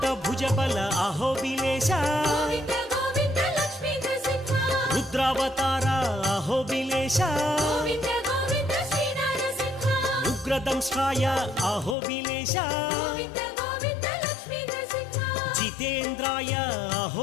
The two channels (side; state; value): right; drops out; at 12.0 s